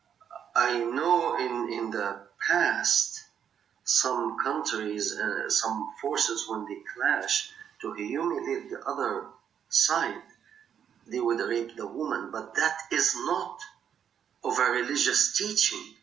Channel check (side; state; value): left; quieter; 8.5 dB